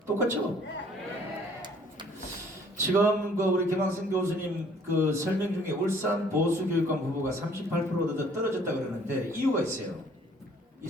똑같죠? 지금 우리 김학생 교수님 그 설명 중에 울산 보수교육감 후보가 38% 떨어졌다 그러는데 이유가 있어요. 이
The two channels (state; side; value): normal; both; correlation 0.58